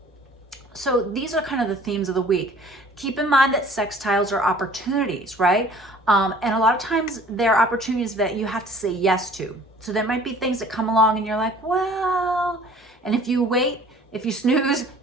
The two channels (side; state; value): both; normal; correlation 0.51